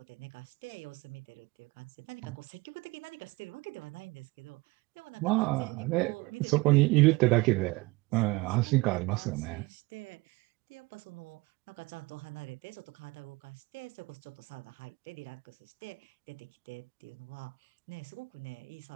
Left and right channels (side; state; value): left; quieter; 23.1 dB